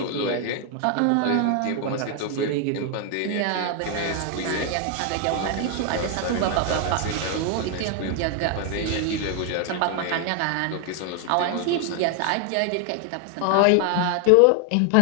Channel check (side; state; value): both; different; correlation 0.00